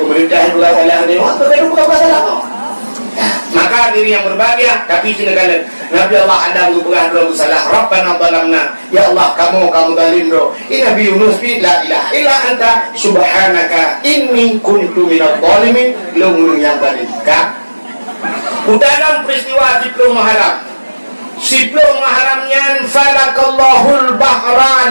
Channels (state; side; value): inverted; both; correlation -1.00